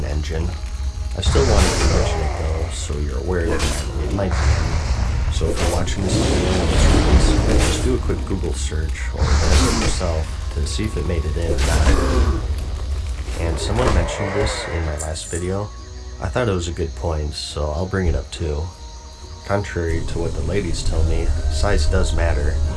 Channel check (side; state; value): both; identical; correlation 1.00